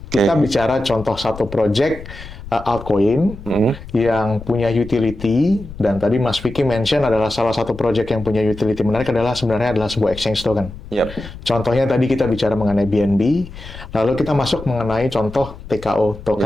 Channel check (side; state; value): left; noise; rumble, 14 dB below the sound